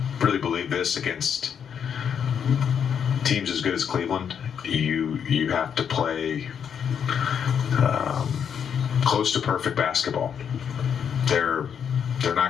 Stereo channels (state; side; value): quieter; right; 7.8 dB